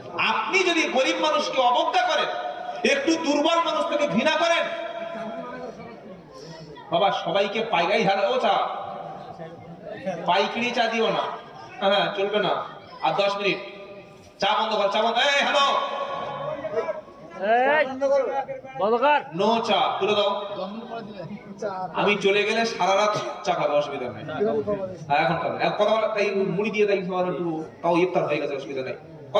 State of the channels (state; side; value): identical; both; correlation 1.00